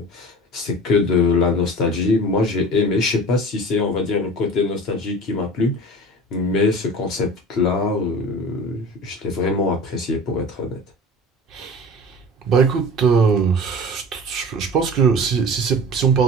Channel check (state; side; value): normal; both; correlation 0.38